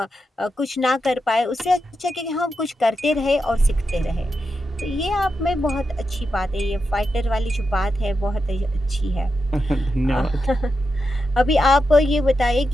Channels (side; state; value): both; normal; correlation 0.87